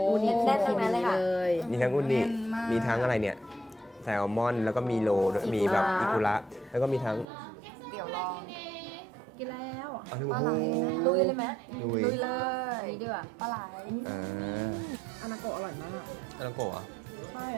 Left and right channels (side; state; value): left; drops out; at 7.2 s